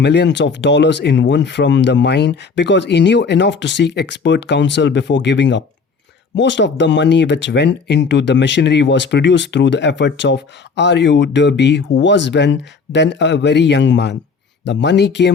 of dollars in one from the mine because he knew enough to seek expert counsel before giving up. Most of the money which went into the machinery was produced through the efforts of R.U. Derby, who was then a very young man. The money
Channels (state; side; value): quieter; right; 5.0 dB